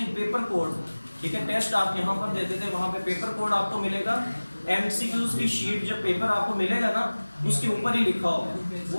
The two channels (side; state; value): both; inverted; correlation -1.00